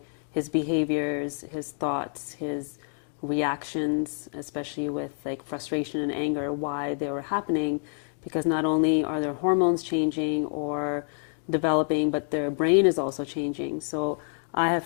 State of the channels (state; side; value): silent; right; 60 dB below the other